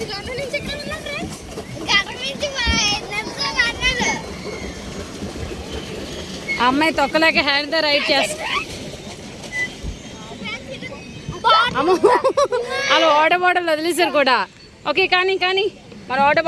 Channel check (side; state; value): both; identical; correlation 1.00